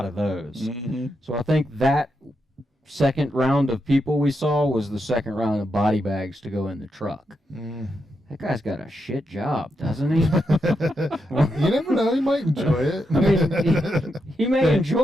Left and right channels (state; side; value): normal; both; correlation 0.84